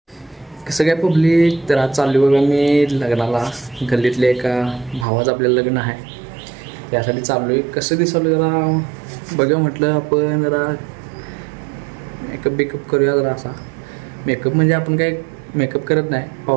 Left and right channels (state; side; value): drops out; left; at 5.1 s